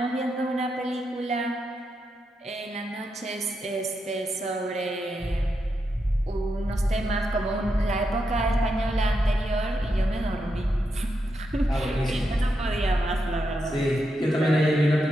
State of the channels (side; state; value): both; normal; correlation 0.84